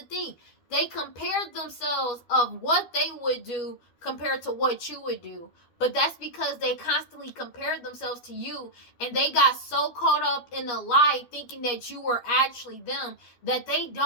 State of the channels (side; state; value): right; late; 12 ms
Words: thing. They compared themselves of what they would do compared to what you would do. But that's because they constantly compared themselves to you, and they got so caught up in the lie thinking that you were actually them that they